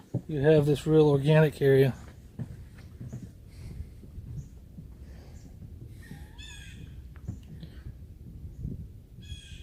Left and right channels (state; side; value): identical; both; correlation 1.00